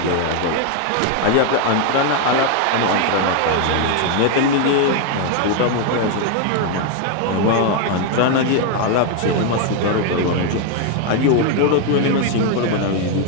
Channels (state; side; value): different; both; correlation 0.01